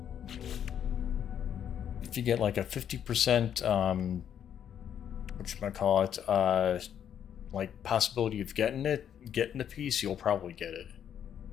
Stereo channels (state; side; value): quieter; right; 9.2 dB